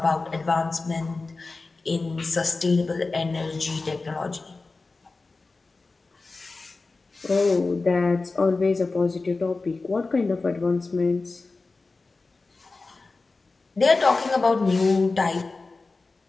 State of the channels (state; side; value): quieter; right; 3.7 dB